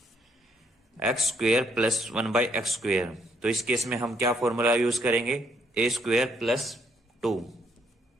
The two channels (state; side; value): normal; both; correlation 0.71